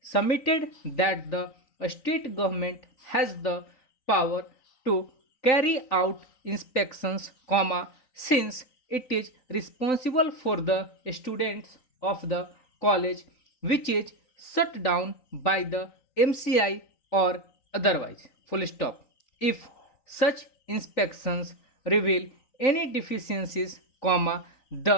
submitted that the state government has the power to carry out inspections, since it is responsible for the students of the college which is shut down by the MCI or otherwise. Full stop. If such inspections reveal any deficiencies,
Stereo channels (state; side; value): late; right; 3.9 ms